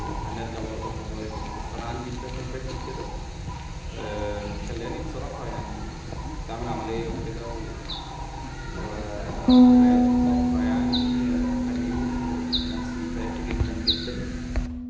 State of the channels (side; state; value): both; identical; correlation 1.00